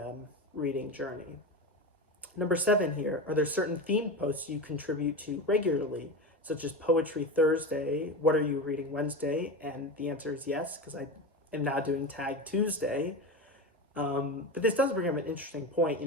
reading journey. Number 7 here, are there certain themed posts you contribute to regularly, such as Poetry Thursday, What Are You Reading Wednesday? And the answer is yes, because I am now doing Tag Tuesday. But this does bring up an interesting point.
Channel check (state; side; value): normal; both; correlation 0.23